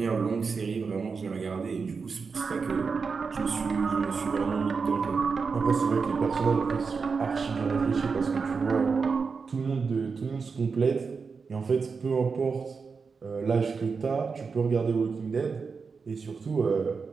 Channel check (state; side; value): quieter; left; 5.1 dB